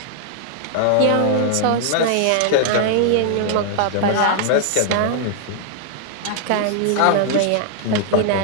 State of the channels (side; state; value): both; different; correlation -0.01